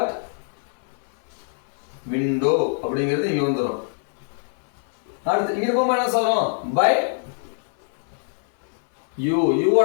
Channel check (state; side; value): silent; right; 61 dB below the other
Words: விண்டோ அப்படிங்கிறது இங்க வந்துரும். அடுத்து இங்க போகும்போது என்ன சொல்றோம்? By you.